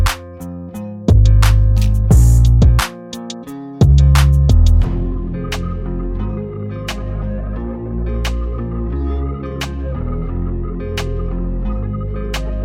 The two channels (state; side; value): identical; both; correlation 1.00